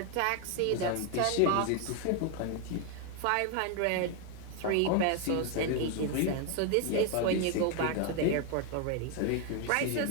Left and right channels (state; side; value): different; both; correlation 0.01